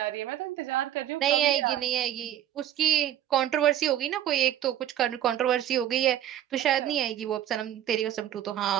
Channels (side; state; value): left; quieter; 11.5 dB